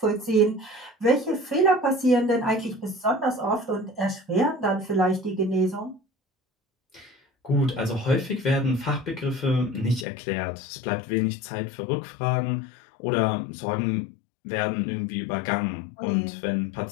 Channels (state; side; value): drops out; right; at 10.1 s